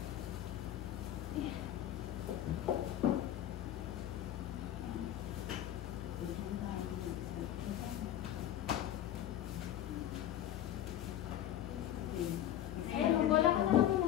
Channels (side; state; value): right; quieter; 11.8 dB